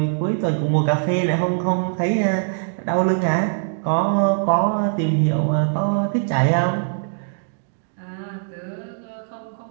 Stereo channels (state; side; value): silent; left; digital silence